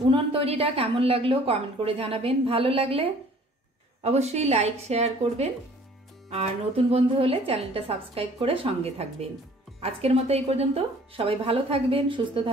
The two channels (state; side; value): normal; both; correlation 0.54